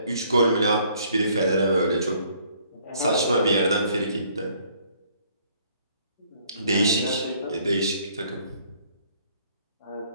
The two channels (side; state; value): both; inverted; correlation -0.62